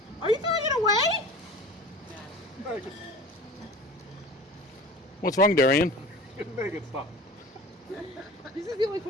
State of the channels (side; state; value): both; normal; correlation 0.40